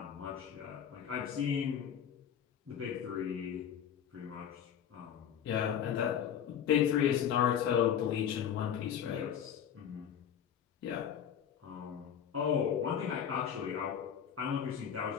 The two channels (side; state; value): right; quieter; 8.8 dB